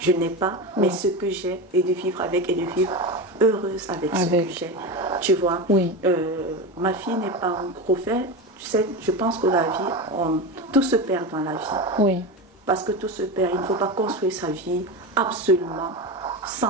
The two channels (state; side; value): normal; both; correlation 0.21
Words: n'ai pas, mais ce que j'ai, et de vivre avec et de vivre heureuse avec ce que j'ai. Tu vois, ma fille n'est pas un gros fait. Tu sais, je pense que la vie, tout se perd dans la vie. Parce que tout se perd. Il ne faut pas construire sa vie absolument